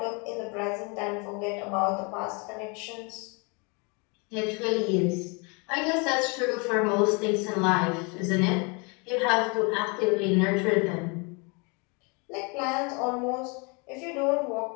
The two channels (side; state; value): right; quieter; 31.8 dB